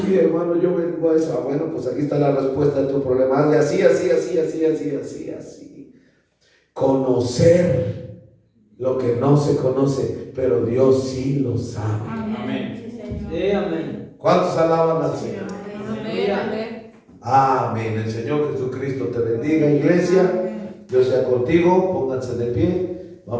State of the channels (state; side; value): identical; both; correlation 1.00